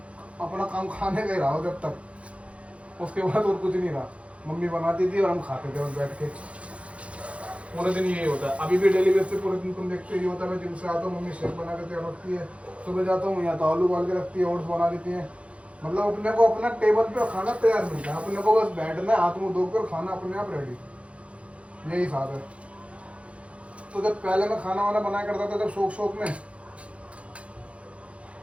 अपना काम खाने का ही रहा जब तक, उसके बाद और कुछ नहीं रहा। मम्मी बनाती थी और हम खाते थे और बैठ के पूरे दिन यही होता है। अभी भी डेली बेस पे पूरे दिन तुम देखते ही होता है, मैं जिम से आता हूँ मम्मी शेक बना के तैयार रखती है, सुबह जाता हूँ या तो आलू उबाल के रखती है, ओट्स बना देती हैं। मतलब अपने को अपना टेबल पे खाना तैयार मिलता है, अपने को बस बैठना है, हाथ मुँह धोकर खाना अपने आप रेडी, यही साथ है। तो जब पहले मैं खाना वाना बनाया करता था जब शौक में,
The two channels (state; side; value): late; left; 0.062 ms